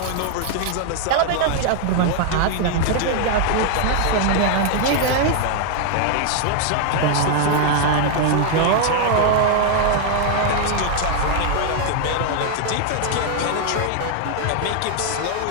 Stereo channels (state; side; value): different; both; correlation 0.00